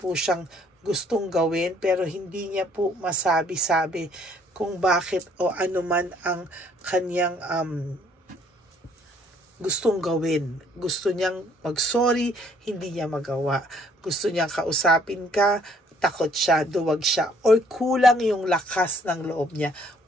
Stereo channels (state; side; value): normal; both; correlation 0.62